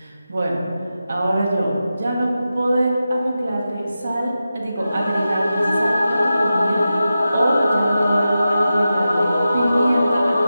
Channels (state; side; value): inverted; both; correlation -0.92